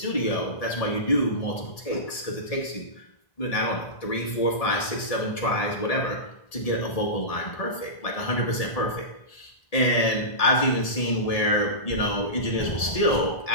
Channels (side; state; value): right; late; 1.7 ms